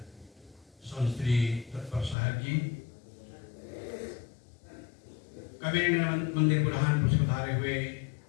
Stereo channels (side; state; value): right; drops out; at 2.1 s